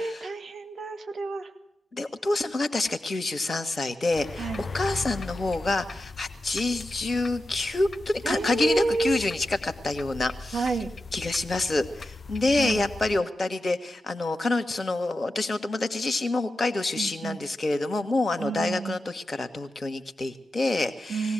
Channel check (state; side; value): normal; both; correlation 0.91